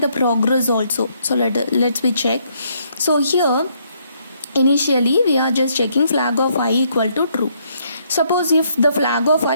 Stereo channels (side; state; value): both; inverted; correlation -0.71